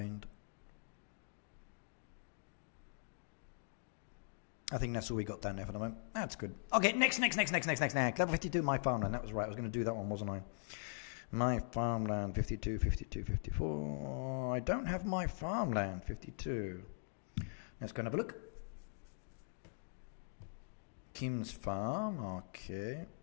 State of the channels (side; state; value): right; silent; digital silence